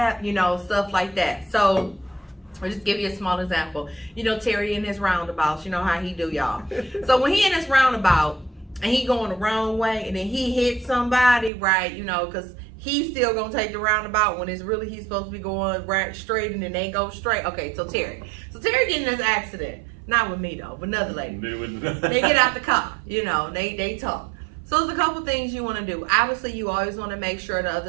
stuff like that. So I'll just give you a small example. Terry in his roundabouts, you know how he do, y'all. So when he in his roundabout and he going the wrong way and then he hits somebody, right, because he's still going to take the roundabout when it's really he's supposed to be going right straight and then they go straight. Okay, so Terry getting in this accident. Not with me though, but another lady. They get out the car, they talk. So there's a couple things you want to do. Obviously, you always want to make sure the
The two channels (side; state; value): left; drops out; at 11.5 s